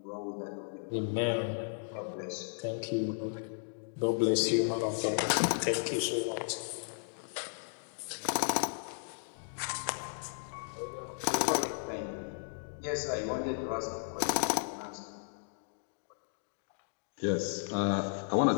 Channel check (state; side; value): silent; right; digital silence